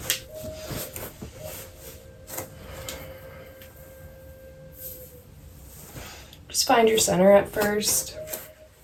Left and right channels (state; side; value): identical; both; correlation 1.00